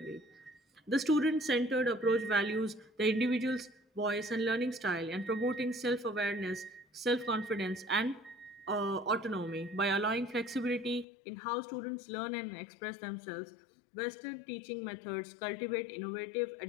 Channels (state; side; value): drops out; right; at 11.1 s